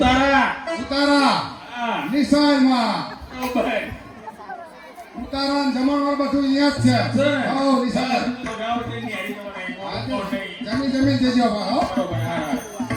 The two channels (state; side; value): identical; both; correlation 1.00